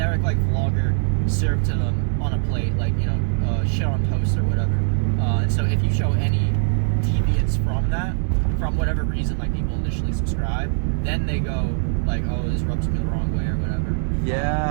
like vlogger served to them on a plate, like, you know, shit on toast or whatever. And so if you show any deviance from that, from whatever reason, like, people initially subscribe, then they go like, oh, this rubs me the wrong way or whatever.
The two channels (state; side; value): silent; left; digital silence